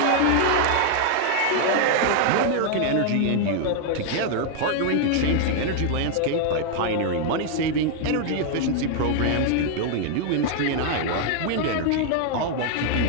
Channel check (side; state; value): both; different; correlation 0.00